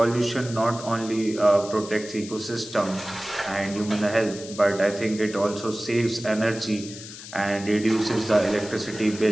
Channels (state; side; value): noise; left; hiss, 14 dB below the sound